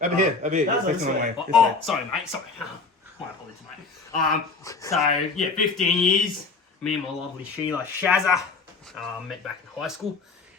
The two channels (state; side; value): quieter; right; 4.3 dB